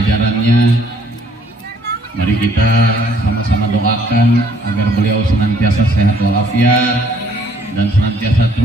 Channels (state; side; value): normal; both; correlation 0.63